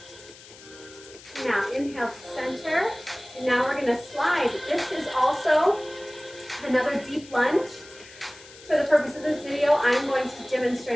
Now inhale to center, and now we're going to slide. This is also another deep lunge. For the purpose of this video, I'm going to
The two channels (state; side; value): noise; left; hiss, 20 dB below the sound